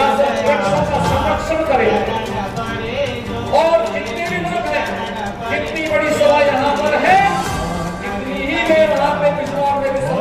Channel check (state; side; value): identical; both; correlation 1.00